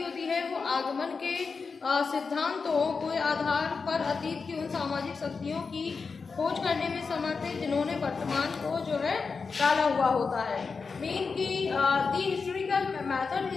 होती है वो आगमन के सिद्धांतों के आधार पर अतीत की उन सामाजिक शक्तियों की खोज करने में समर्थ है जिन्होंने वर्तमान को जो है डाला हुआ होता है। मीन की the historical method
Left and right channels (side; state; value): right; quieter; 4.9 dB